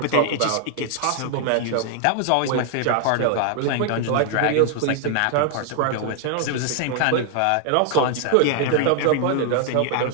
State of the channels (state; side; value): different; both; correlation 0.00